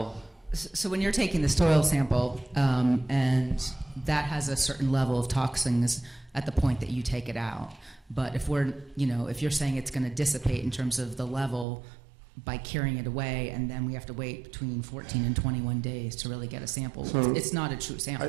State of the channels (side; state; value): left; drops out; at 11.7 s